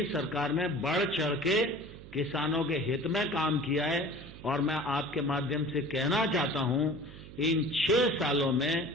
सरकार ने बढ़ चढ़ के किसानों के हित में काम किया है। और मैं आपके माध्यम से कहना चाहता हूं, इन 6 सालों में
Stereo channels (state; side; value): noise; right; hum, 16 dB below the sound